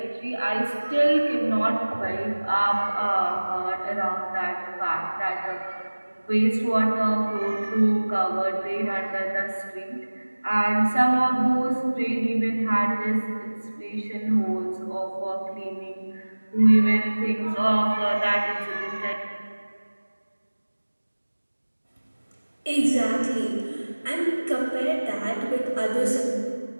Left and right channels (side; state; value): both; inverted; correlation -1.00